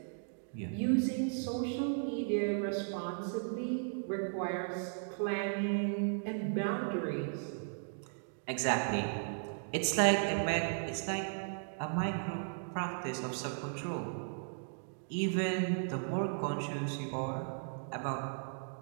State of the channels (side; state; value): left; silent; digital silence